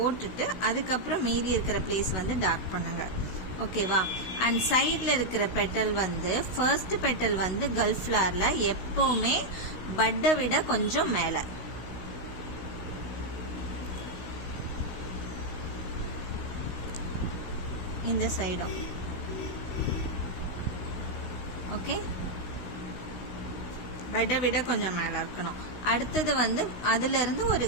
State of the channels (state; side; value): late; right; 16 ms